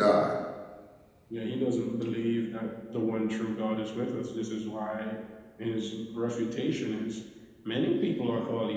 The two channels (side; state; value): both; identical; correlation 1.00